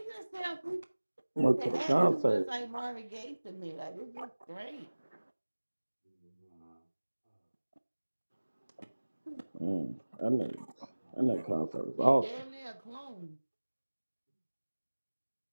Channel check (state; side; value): inverted; both; correlation -1.00